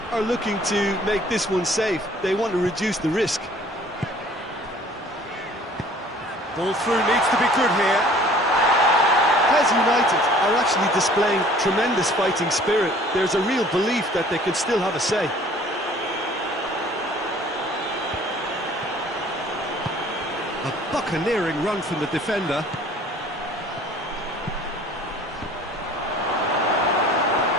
are looking to make this one safe. They want to reduce the risk. Ball through needs to be good here. Pez United are actually displaying tremendous fighting spirit. There's a real belief that they can still have a say. A buccaneering run from the defender.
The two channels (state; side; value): normal; both; correlation 0.52